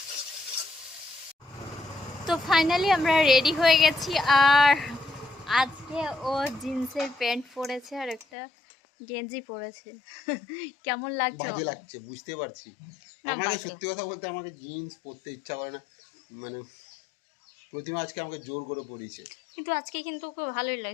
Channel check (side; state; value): right; drops out; at 8.2 s